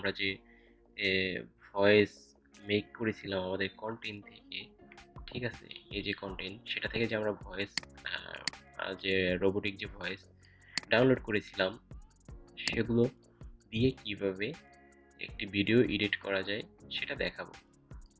যে ভয়েস মেক করেছিলাম আমাদের কন্টেন্ট থেকে, ঠিক আছে? এই যে কন্টেন্ট সেটা থেকে যে আমরা ভয়েস যে রোবোটিক যে ভয়েস ডাউনলোড করেছিলাম সেগুলো দিয়ে কিভাবে একটি ভিডিও এডিট করা যায় সেটা দেখাবো।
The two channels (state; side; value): identical; both; correlation 1.00